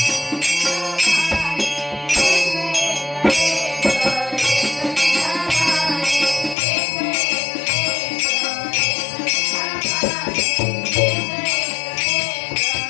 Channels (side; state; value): right; drops out; at 6.6 s